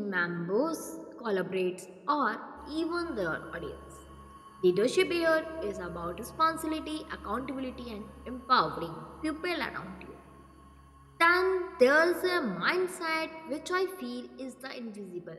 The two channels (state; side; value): identical; both; correlation 1.00